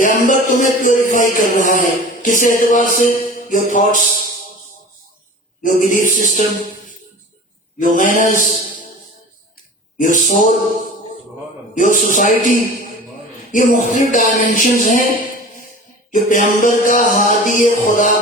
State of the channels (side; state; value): both; normal; correlation 0.38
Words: تمہیں پیوریفائی کر رہا ہے. کس اعتبار سے؟ Your thoughts, your belief system, your manners, your soul, your society. یہ مختلف ڈائمینشنز ہیں جو پیغمبر کا، ہادی خدا